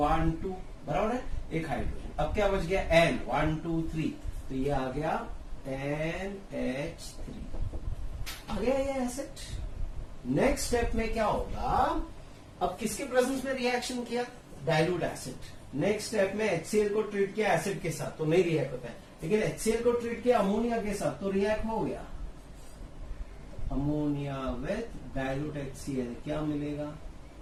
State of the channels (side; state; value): both; identical; correlation 1.00